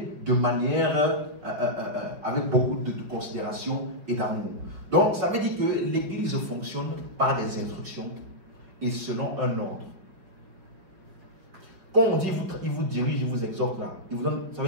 de manière avec beaucoup de considération et d'amour. Donc, ça veut dire que l'église fonctionne par des instructions et selon un ordre. Quand on dit il vous dirige, il vous exhorte là, ça veut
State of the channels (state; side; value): late; left; 5.4 ms